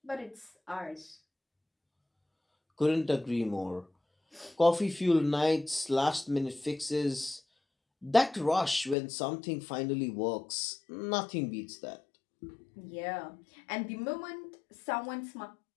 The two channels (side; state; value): right; drops out; at 9.0 s